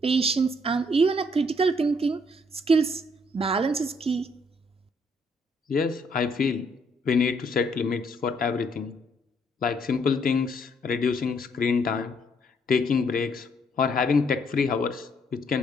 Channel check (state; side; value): normal; both; correlation 0.69